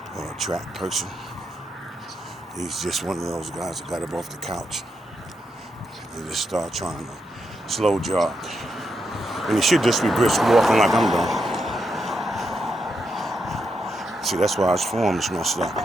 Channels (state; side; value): normal; both; correlation 0.83